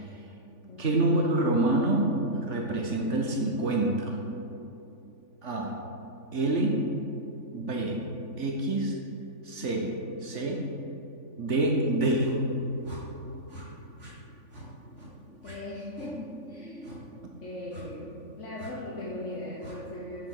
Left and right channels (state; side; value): late; right; 3.5 ms